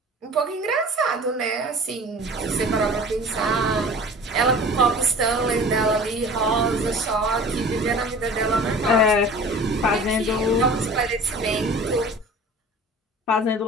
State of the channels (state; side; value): normal; both; correlation 0.42